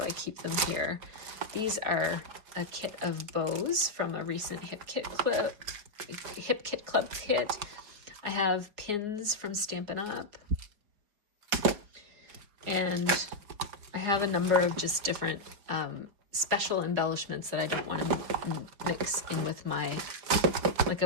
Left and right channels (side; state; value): left; late; 4.8 ms